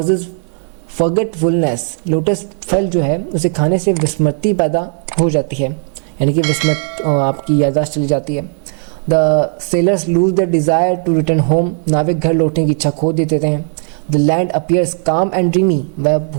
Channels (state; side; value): silent; left; 57 dB below the other